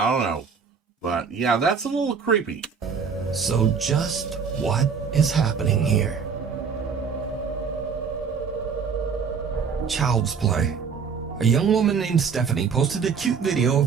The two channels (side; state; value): left; quieter; 6.1 dB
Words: don't know. But yeah, that's a little creepy. So just what is happening here? child's play. A young woman named Stephanie posted a cute video